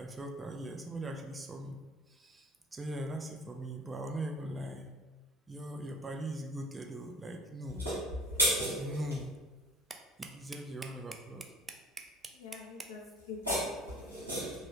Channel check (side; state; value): both; normal; correlation 0.45